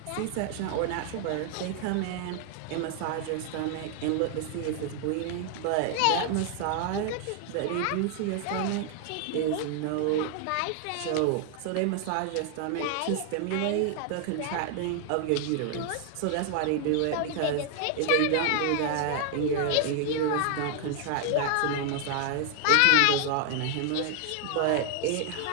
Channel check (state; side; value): different; both; correlation 0.00